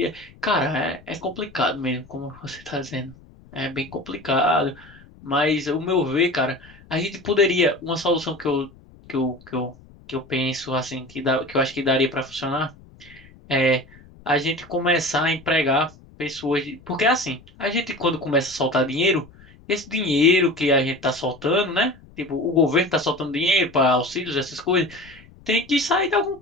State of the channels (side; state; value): left; noise; rumble, 24 dB below the sound